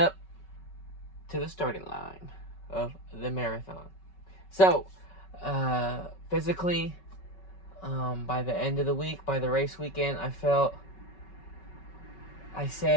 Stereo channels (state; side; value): late; right; 5.3 ms